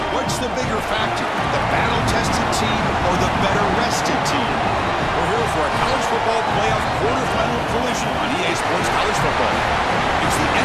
What's the bigger factor, the battle-tested team or the better-rested team? We're here for a college football playoff quarterfinal collision on EA Sports College Football. It's the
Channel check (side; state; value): both; identical; correlation 1.00